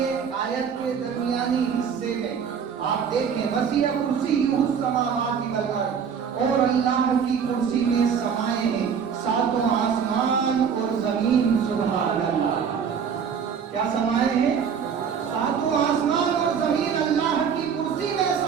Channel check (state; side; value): quieter; left; 7.0 dB